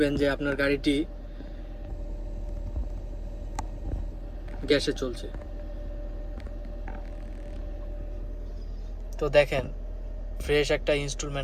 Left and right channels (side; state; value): both; identical; correlation 1.00